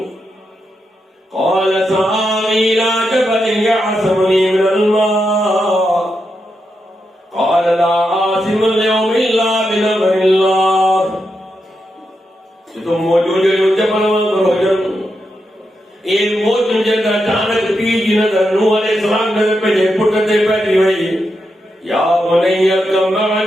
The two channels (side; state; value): both; normal; correlation 0.85